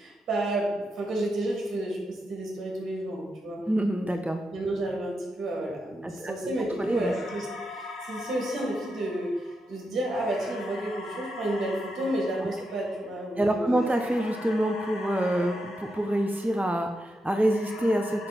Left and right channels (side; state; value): both; normal; correlation 0.85